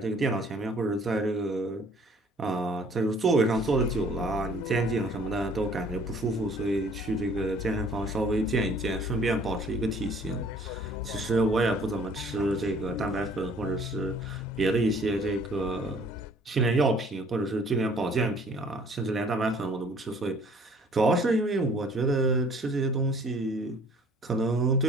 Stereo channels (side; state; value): both; normal; correlation 0.55